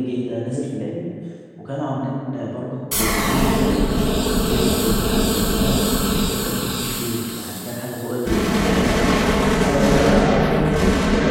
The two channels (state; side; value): identical; both; correlation 1.00